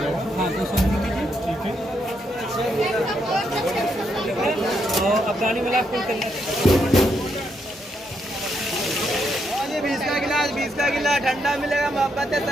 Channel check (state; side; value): normal; both; correlation 0.78